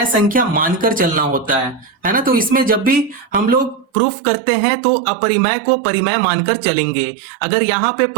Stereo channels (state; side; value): drops out; left; at 3.9 s